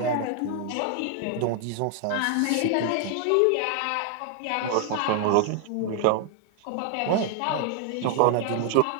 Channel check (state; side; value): different; both; correlation 0.00